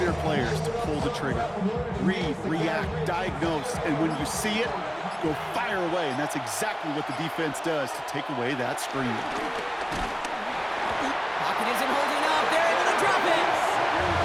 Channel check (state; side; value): identical; both; correlation 1.00